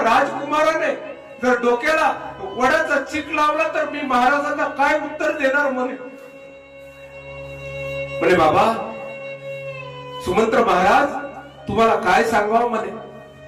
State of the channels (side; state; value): both; identical; correlation 1.00